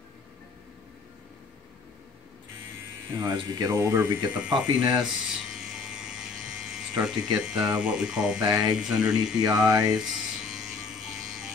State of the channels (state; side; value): quieter; right; 4.6 dB